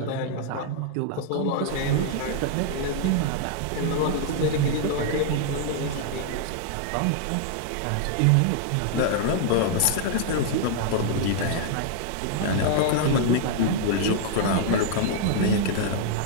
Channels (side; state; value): both; different; correlation -0.01